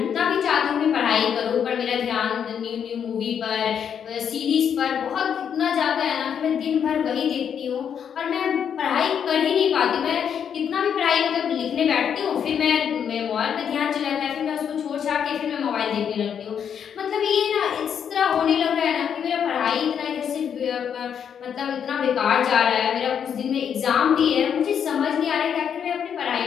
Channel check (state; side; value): quieter; right; 8.0 dB